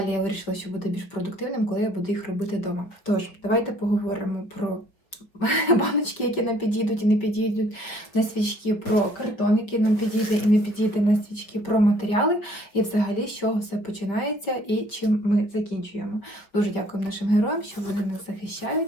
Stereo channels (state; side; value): late; right; 5.4 ms